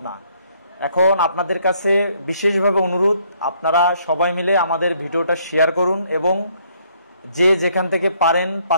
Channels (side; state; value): both; inverted; correlation -0.68